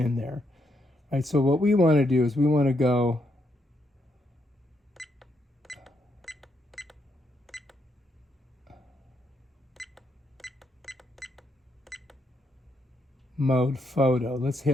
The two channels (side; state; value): both; normal; correlation 0.78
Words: there. All right, so what we want to do is we want to go mode photo. Let's